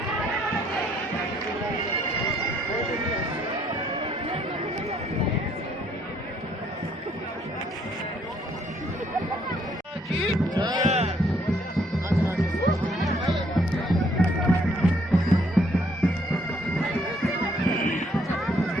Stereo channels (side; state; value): both; normal; correlation 0.67